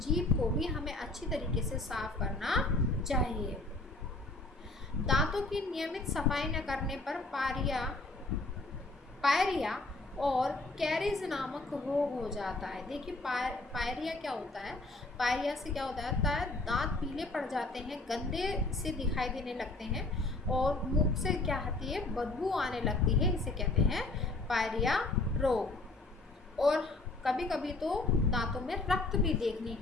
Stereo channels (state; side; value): quieter; right; 3.1 dB